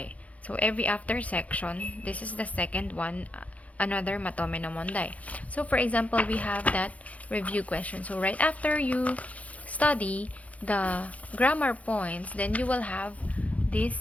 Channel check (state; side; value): late; right; 0.066 ms